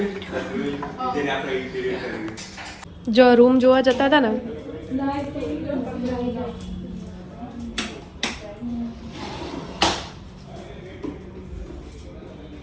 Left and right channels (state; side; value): identical; both; correlation 1.00